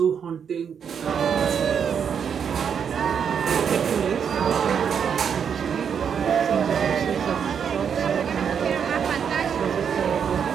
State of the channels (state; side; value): quieter; left; 7.4 dB